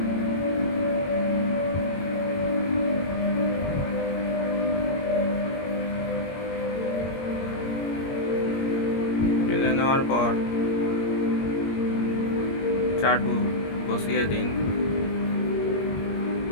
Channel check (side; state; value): right; late; 21 ms